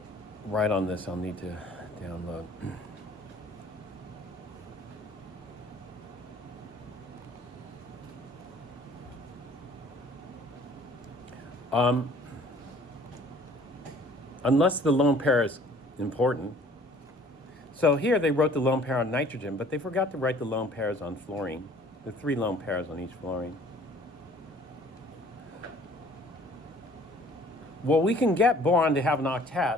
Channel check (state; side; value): normal; both; correlation 0.54